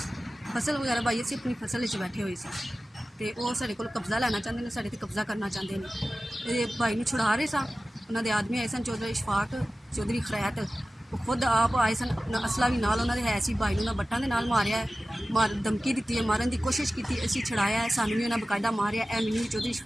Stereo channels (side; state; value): both; normal; correlation 0.96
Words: ਫਸਲ ਵਗੈਰਾ ਭਾਈ ਅਸੀਂ ਆਪਣੀ ਫਸਲ ਵਿੱਚ ਬੈਠੇ ਹੋਏ ਸੀ ਤੇ ਉਹ ਸਾਡੇ ਕੋਲ ਕਬਜ਼ਾ ਲੈਣਾ ਚਾਹੁੰਦੇ ਨੇ, ਸਾਡੇ ਤੇ ਕਬਜ਼ਾ ਕਰਨਾ ਚਾਹੁੰਦੇ ਨੇ। ਇਹ ਭਾਈ ਨੂੰ ਛੁਡਾ ਰਹੇ ਸਾਂ, ਉਹਨਾਂ ਦੇ ਆਦਮੀ ਆਏ ਸਨ, ਚੌਧਰੀ اشفاق, ਚੌਧਰੀ ਖਰੈਤ, ਉਹ ਖੁਦ ਆਪ ਆਏ ਸਨ, ਅਸਲਾ ਵੀ ਨਾਲ ਉਹਨਾਂ ਦੇ ਹੈ ਸੀ। ਭਾਈ ਨੂੰ ਉਹਨਾਂ ਬੱਟਾਂ ਦੇ ਨਾਲ ਮਾਰਿਆ ਹੈ, ਧਮਕੀ ਦਿੱਤੀ ਹੈ, ਮਾਰਨ ਦੀ ਕੋਸ਼ਿਸ਼ ਕੀਤੀ, ਅਸੀਂ ਛੁਡਾਇਆ ਹੈ, ਸਾਨੂੰ ਵੀ ਉਹਨਾਂ ਬਕਾਇਦਾ ਮਾਰਿਆ। ਇਹ ਮੈਨੂੰ ਵੀ ਚੌਧਰੀ